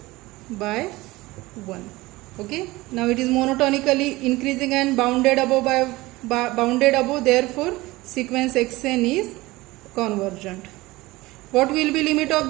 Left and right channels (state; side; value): quieter; left; 20.0 dB